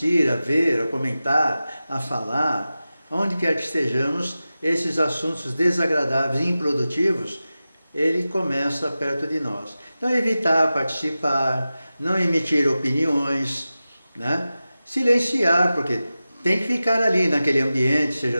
a ver, a comentar, a falar, onde quer que estejamos, esses assuntos desagradáveis e improdutivos, ele começa perto de nós. Então, evitar participar, não emitir opiniões, né? Silenciar, porque tem que ficar ali naquele ambiente, seja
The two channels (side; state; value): both; inverted; correlation -0.94